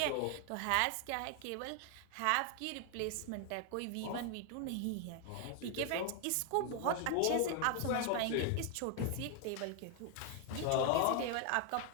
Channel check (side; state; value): both; different; correlation 0.00